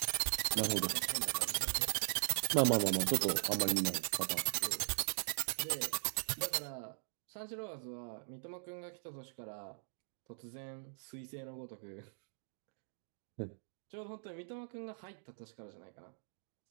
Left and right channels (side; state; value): left; silent; digital silence